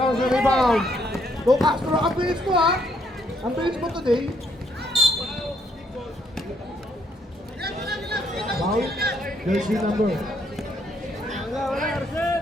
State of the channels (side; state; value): both; normal; correlation 0.71